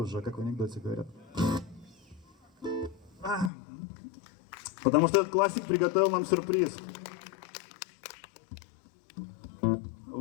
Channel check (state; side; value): drops out; right; at 3.5 s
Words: как в анекдоте говорят. Потому что этот классик приготовил нам сюрприз.